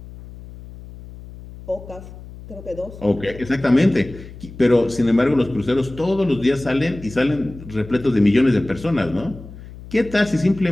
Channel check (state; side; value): noise; left; hum, 16 dB below the sound